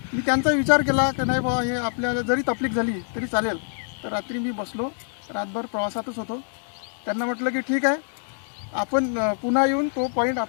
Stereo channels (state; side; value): silent; right; digital silence